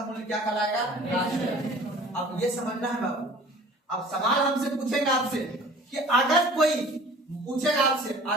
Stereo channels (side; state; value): both; normal; correlation 0.47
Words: मूल्य क्या कहलाएगा। अब ये समझना है बाबू। अब सवाल हमसे पूछेगा आपसे कि अगर कोई पूछेगा आपसे,